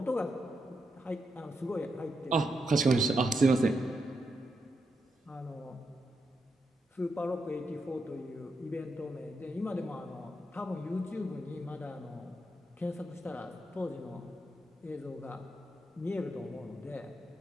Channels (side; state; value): both; normal; correlation 0.84